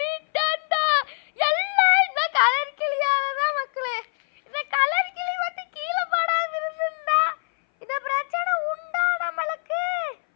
எல்லாம் இந்த கலர் கிளியாலதான் மக்களே. இந்த கலர் கிளி வந்து கீழே படாம இருந்தா இந்த பிரச்சனை உண்டா நம்மளுக்கு?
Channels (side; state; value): right; silent; 59 dB below the other